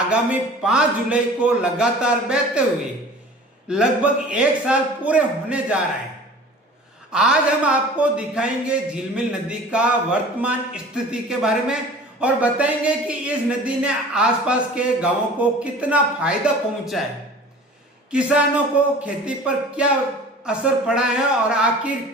5 जुलाई को लगातार बहते हुए लगभग 1 साल पूरे होने जा रहा है। आज हम आपको दिखाएंगे झिलमिल नदी का वर्तमान स्थिति के बारे में और बताएंगे कि इस नदी ने आसपास के गांवों को कितना फायदा पहुंचा है, किसानों को खेती पर क्या असर पड़ा है और आखिर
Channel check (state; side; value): normal; both; correlation 0.43